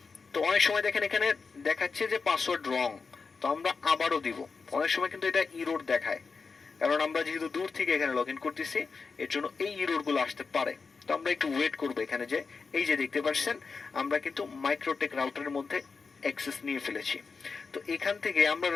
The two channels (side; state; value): right; quieter; 4.8 dB